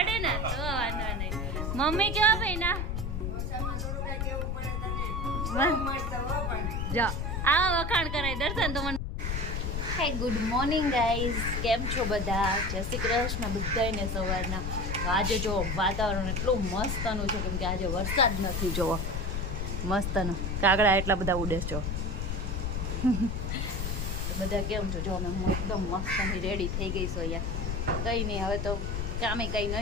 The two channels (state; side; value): noise; left; rumble, 1 dB below the sound